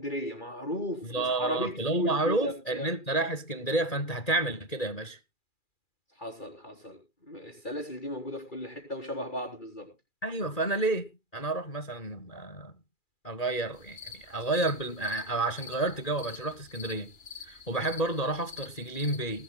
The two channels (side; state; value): right; late; 2.4 ms